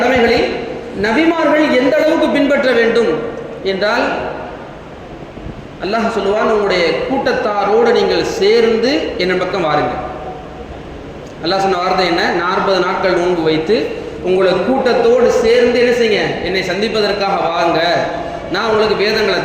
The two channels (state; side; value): identical; both; correlation 1.00